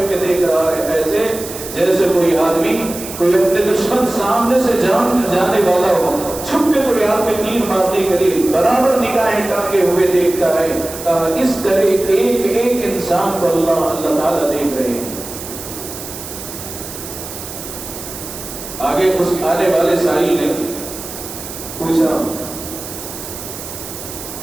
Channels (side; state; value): right; noise; hiss, 11 dB below the sound